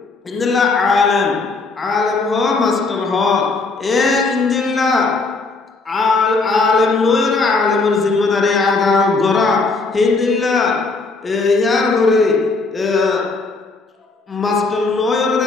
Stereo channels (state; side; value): quieter; right; 3.8 dB